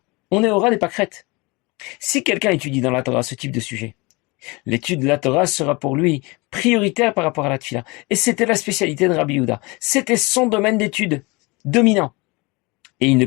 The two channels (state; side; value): quieter; right; 25.8 dB